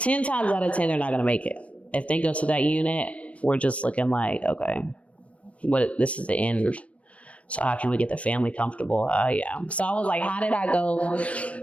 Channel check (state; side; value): late; right; 0.064 ms